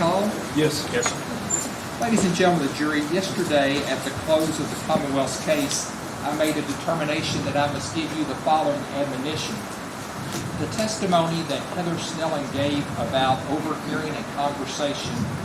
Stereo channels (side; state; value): both; identical; correlation 1.00